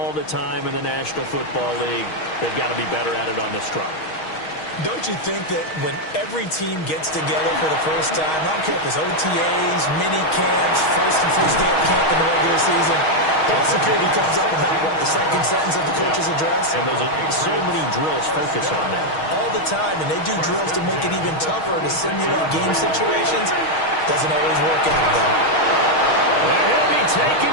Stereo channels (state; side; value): late; right; 6.3 ms